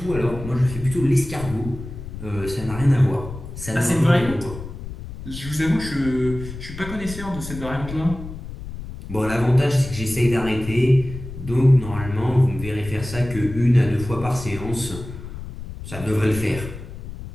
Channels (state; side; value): noise; left; rumble, 11 dB below the sound